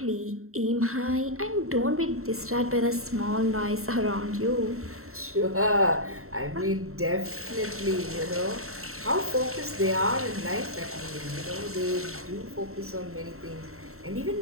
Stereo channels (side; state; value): left; late; 0.63 ms